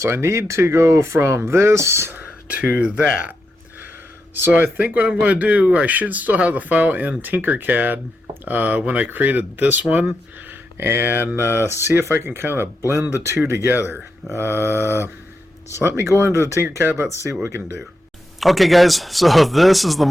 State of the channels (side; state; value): both; normal; correlation 0.85